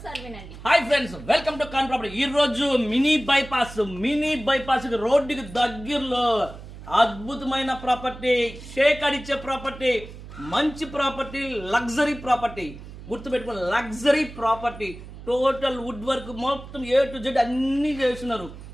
వినండి. హాయ్ ఫ్రెండ్స్, వెల్కమ్ టు కాన్ ప్రాపర్టీ. ఈ రోజు మినీ బైపాస్ రోడ్డుకి దగ్గరలో అద్భుతమైన ప్రాపర్టీ, షేక్ అడిచే ప్రాపర్టీ, మంచి ప్రాపర్టీ, లగ్జరీ ప్రాపర్టీ. గుర్తుపెట్టుకుని luxury property, total wood work మొత్తం A to Z అన్నీ చేస్తున్నారు.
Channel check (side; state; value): right; noise; hum, 14 dB below the sound